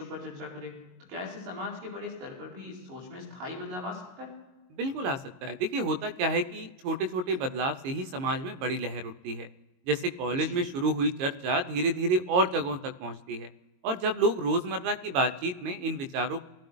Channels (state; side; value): late; left; 22 ms